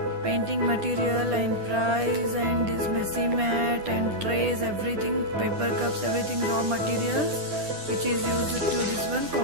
painting material and price, and this messy mat and trays, everything, paper cups, everything raw materials which is used to this one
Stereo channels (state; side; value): late; left; 10 ms